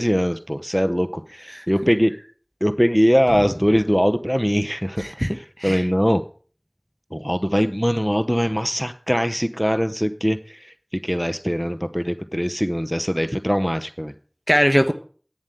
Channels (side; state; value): both; identical; correlation 1.00